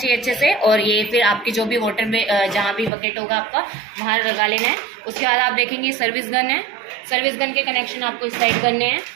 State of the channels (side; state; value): left; drops out; at 2.9 s